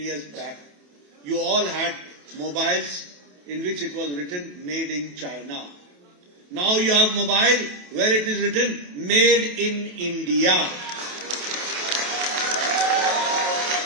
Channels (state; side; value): late; left; 28 ms